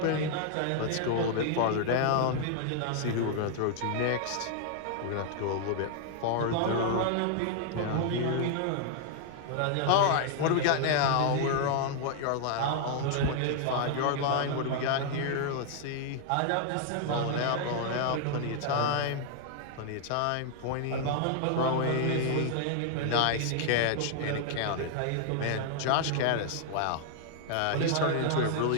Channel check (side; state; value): both; different; correlation 0.00